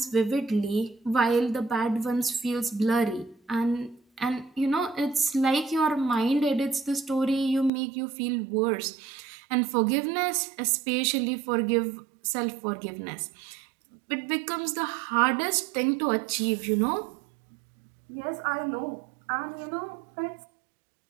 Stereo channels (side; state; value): left; drops out; at 7.7 s